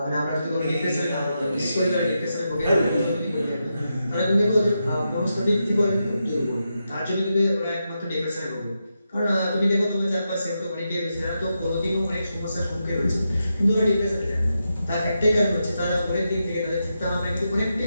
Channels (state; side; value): inverted; both; correlation -0.86